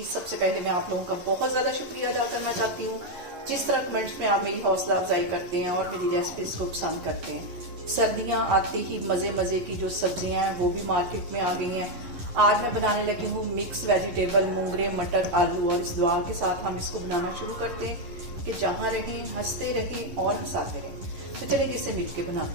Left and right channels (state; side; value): late; left; 11 ms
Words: सबसे पहले मैं आप लोगों का बहुत ज़्यादा शुक्रिया अदा करना चाहती हूँ जिस तरह कमेंट्स में आप मेरी हौसला अफजाई करते हैं और मेरी रेसिपीज को पसंद करते हैं। सर्दियाँ आते ही मज़े मज़े की जो सब्जियाँ हैं वो भी मार्केट में आ गई हैं। आज मैं बनाने लगी हूँ मिक्स वेजिटेबल मूंगरे मटर आलू, और इस दुआ के साथ हम इसको बनाना शुरू करते हैं कि जहाँ रहें हंसते रहें और हंसाते रहें। तो चलिए इसे मिल के